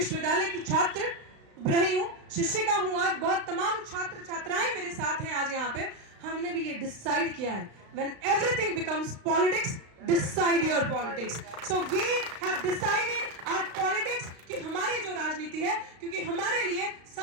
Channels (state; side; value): late; left; 35 ms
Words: की छात्र रही हूँ, शिक्षिका हूँ, आज बहुत तमाम छात्र छात्राएं मेरे साथ हैं आज यहाँ पे, हमने भी ये डिसाइड किया है, when everything becomes politics, decide your politics. So we have decided our politics कि हमारी जो राजनीति है, क्योंकि हमारे लिए